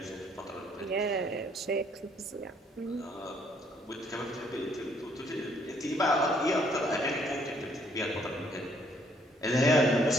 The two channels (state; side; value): normal; both; correlation 0.66